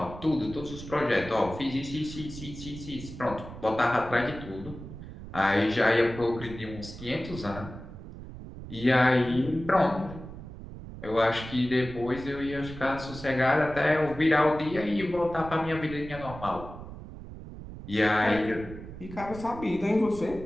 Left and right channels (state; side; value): noise; right; rumble, 13 dB below the sound